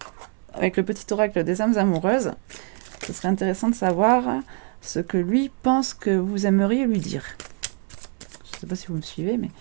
Avec le petit oracle des âmes amoureuses, ce serait intéressant de savoir ce que lui pense que vous aimeriez lui dire. Je ne sais pas si vous me suivez, mais...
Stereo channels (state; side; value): quieter; left; 36.3 dB